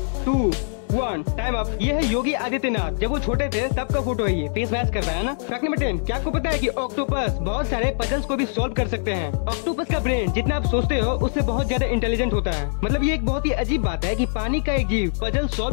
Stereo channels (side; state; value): right; silent; digital silence